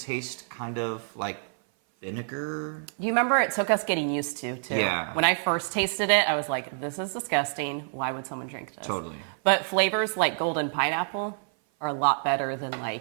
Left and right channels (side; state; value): left; silent; 57 dB below the other